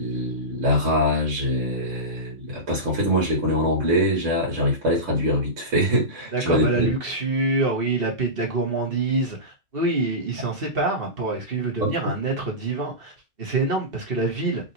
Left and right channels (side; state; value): left; late; 2.7 ms